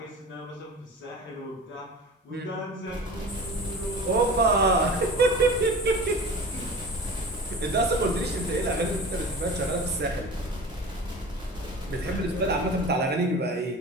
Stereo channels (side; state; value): both; normal; correlation 0.36